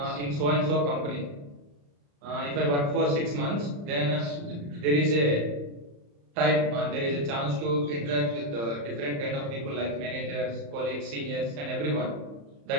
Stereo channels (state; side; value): late; left; 35 ms